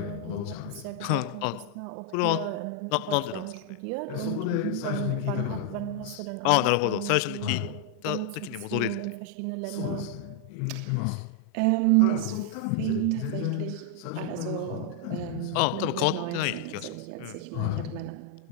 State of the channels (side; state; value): both; different; correlation 0.00